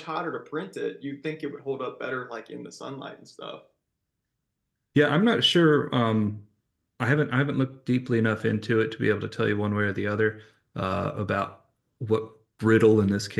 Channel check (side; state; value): both; identical; correlation 1.00